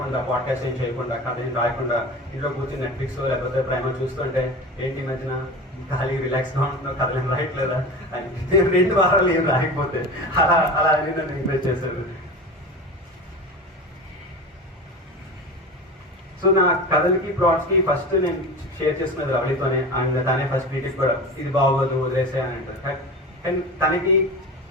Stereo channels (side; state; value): both; normal; correlation 0.30